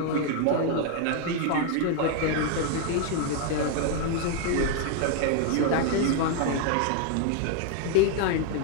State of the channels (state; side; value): different; both; correlation 0.00